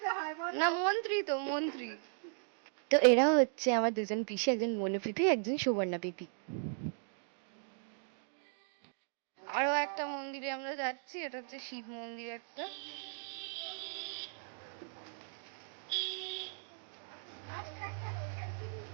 না মন্ত্রী তো মন্ত্রী। তো এরা হচ্ছে আমার দুজন পিসি, একজন মনু পিপি, একজন সুবর্ণা পিপি। আরো একটা মন্দিরে আমরা যাচ্ছি, এটা হচ্ছে শিব মন্দির একটা।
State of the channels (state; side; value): silent; left; digital silence